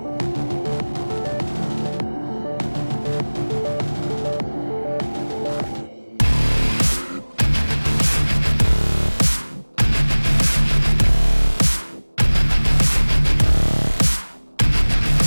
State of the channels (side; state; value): both; inverted; correlation -1.00